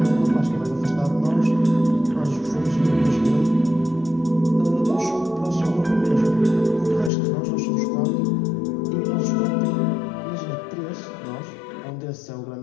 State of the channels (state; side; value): drops out; right; at 7.1 s